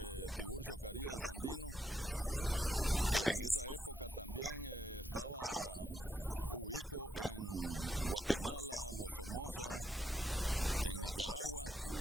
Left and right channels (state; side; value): normal; both; correlation 0.79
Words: Tiburcio Carías Andino, que en esa época también estaba ubico en Guatemala, Los Somoza, en Nicaragua,